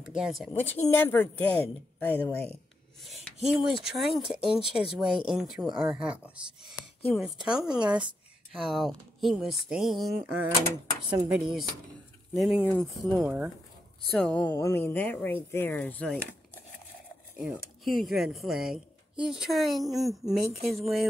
against it, which he never did, by the way. He was trying to inch his way into our house. He was telling us how he was staying on somebody's living room floor. So, I mean, that right there is like, you know, huge red flag. He's trying to make his way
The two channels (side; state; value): both; normal; correlation 0.83